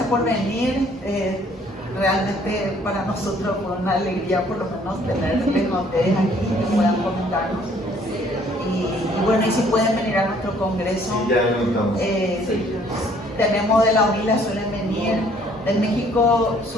por venir. Realmente para nosotros fue una alegría por lo menos tenerles a ustedes aquí que puedan comentarnos. Y bueno, y si pueden venir a nuestro congreso, Sí, ya lo notamos. tenemos de la UNILA, suelen venir, del México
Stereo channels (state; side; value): normal; both; correlation 0.61